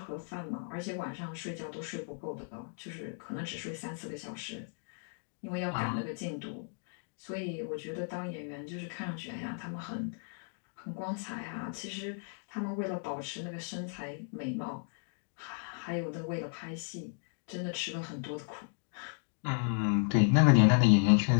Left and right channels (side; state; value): right; silent; 55 dB below the other